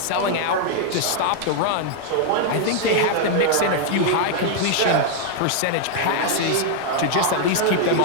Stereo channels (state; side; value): different; both; correlation 0.00